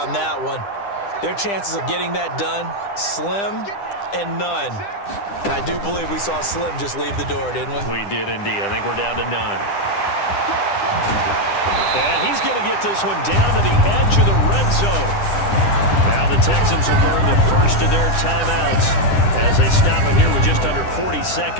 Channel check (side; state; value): right; late; 10 ms